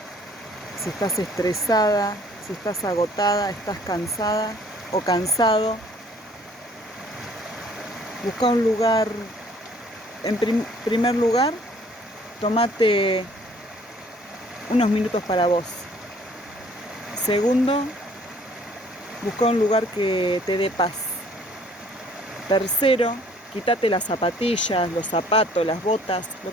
si estás estresada, si estás agotada, estás cansada o cansado, busca un lugar. En primer lugar, tómate unos minutos para vos. Segundo, busca un lugar que te dé paz. Tercero, quítate las zapatillas, los zapatos, las botas, lo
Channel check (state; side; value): normal; both; correlation 0.57